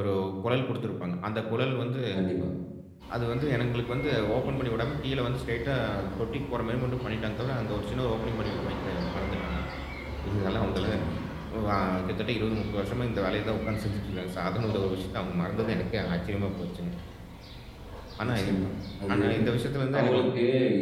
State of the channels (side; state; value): both; identical; correlation 1.00